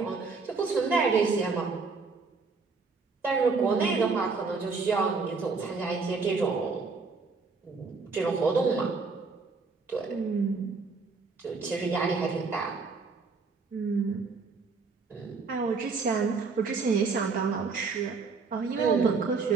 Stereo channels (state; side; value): quieter; left; 4.5 dB